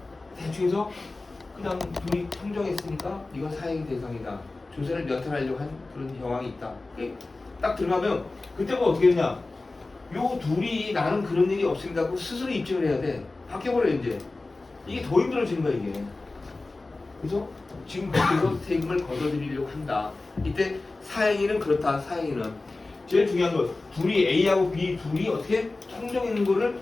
대충 해서 그냥 둘이 통정했으니까 이건 사행 대상이다. 조세를 면탈하려고 한 그런 정황이 있다. 딱 들어가면 그때가 어떻게 되냐? 요 둘이 나는 그런 일이 없습니다 하고 스스로 입증을 해야 돼. 바뀌어버려 이제. 이게 더 힘들어지는 거야 이게. 그래서 지금 그래서 세금을 걷어들이려고 한다. 이때 사행위는 그렇다. 사행위는 제일 중요한 건 둘이 A하고 B 둘이 어떻게 통정했는 거를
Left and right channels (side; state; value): right; quieter; 3.3 dB